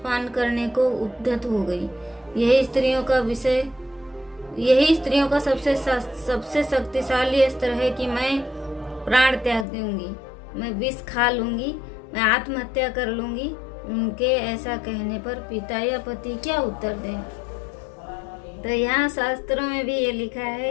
करने को उद्यत हो गई। यही स्त्रियों का सबसे शक्तिशाली अस्त्र है कि मैं प्राण त्याग दूंगी, मैं विष खा लूंगी, मैं आत्महत्या कर लूंगी। उनके ऐसा कहने पर पिता या पति क्या उत्तर दें? तो यहाँ शास्त्रों में भी ये लिखा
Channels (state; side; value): drops out; right; at 9.7 s